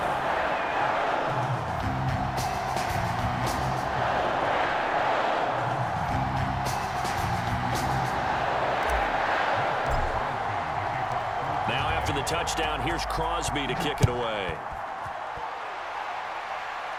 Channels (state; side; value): identical; both; correlation 1.00